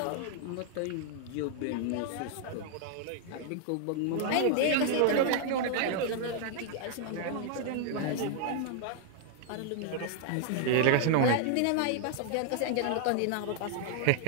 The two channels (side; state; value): both; different; correlation 0.00